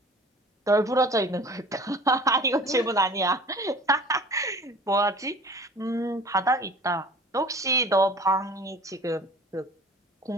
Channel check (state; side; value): normal; both; correlation 0.44